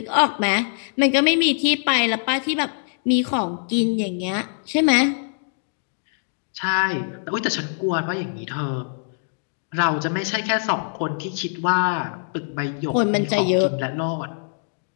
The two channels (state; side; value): silent; right; digital silence